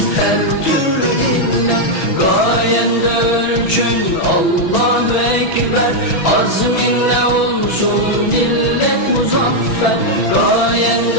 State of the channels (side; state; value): right; late; 6.1 ms